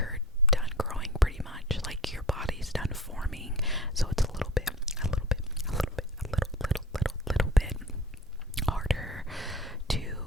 done growing pretty much, like your body's done forming, so it's a little bit harder to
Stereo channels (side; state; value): both; normal; correlation 0.40